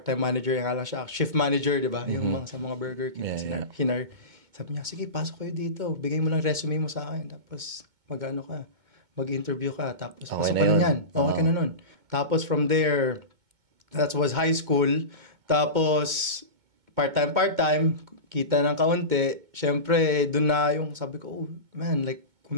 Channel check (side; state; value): left; late; 2.2 ms